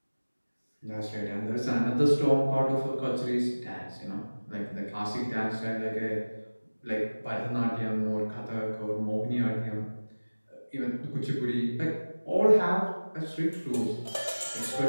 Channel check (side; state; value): both; inverted; correlation -1.00